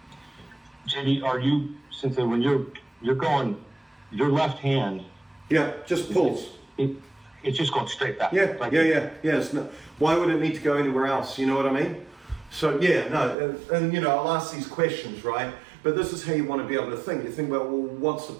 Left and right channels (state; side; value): drops out; left; at 13.4 s